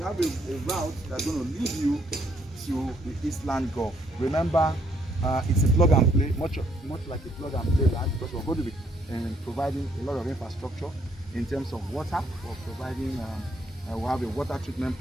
have a route that's going to lead you to the Eastland Golf. Remember, it's a plug and play, much like a plug and play land, because we're going to be providing a lot of infrastructure in terms of water. We're providing. We have a water treatment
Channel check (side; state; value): both; normal; correlation 0.70